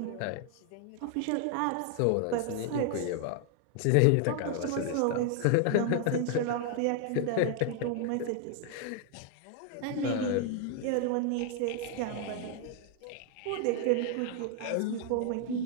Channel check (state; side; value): different; both; correlation 0.00